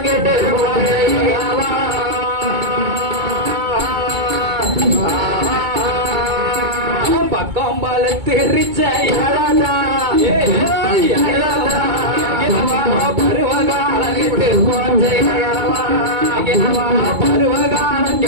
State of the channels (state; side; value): late; left; 2.2 ms